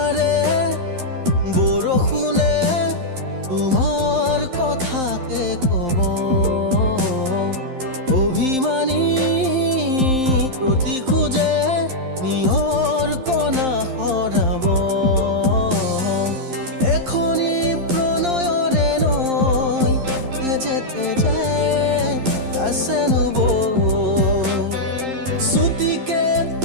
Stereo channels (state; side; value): late; left; 11 ms